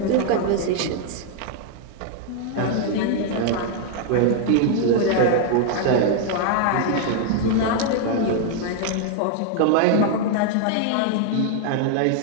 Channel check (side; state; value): both; different; correlation 0.00